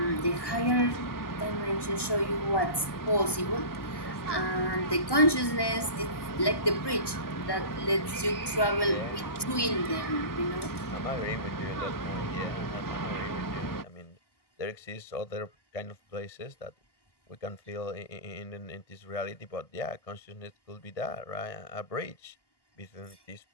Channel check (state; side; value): late; right; 1.1 ms